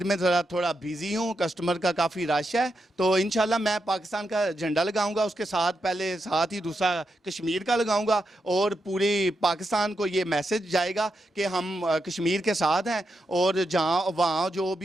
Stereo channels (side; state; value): both; normal; correlation 0.85